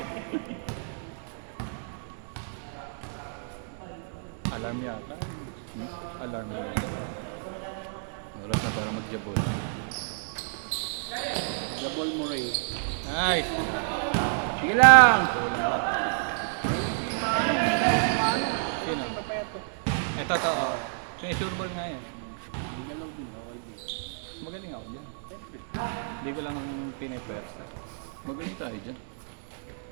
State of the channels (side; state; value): left; silent; digital silence